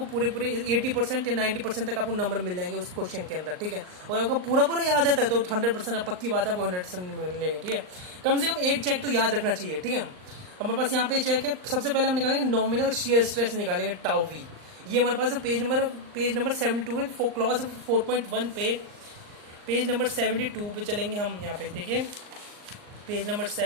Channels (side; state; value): left; late; 39 ms